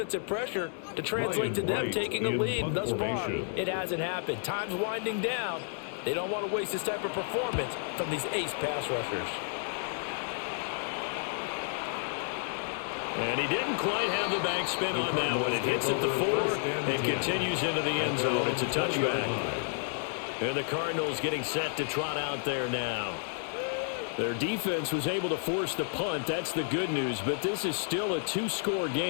pressure to translate to them taking a lead. Thus far, it hasn't happened. Time's winding down. They don't want to waste this type of performance from these ace pass rushers. And he didn't quite have the back spin on that one. It hits at the 4 and continues into the end zone. It's a touchback. And the Cardinals getting set to trot out there now. Their defense was able to force the punt. That's the good news. But this is still a 2-score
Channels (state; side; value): silent; right; digital silence